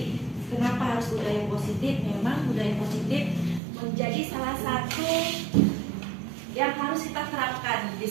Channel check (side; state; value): left; drops out; at 3.6 s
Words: Kenapa harus budaya positif? Memang budaya positif menjadi salah satu yang harus kita terapkan di